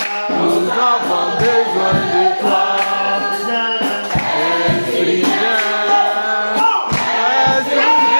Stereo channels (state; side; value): inverted; both; correlation -1.00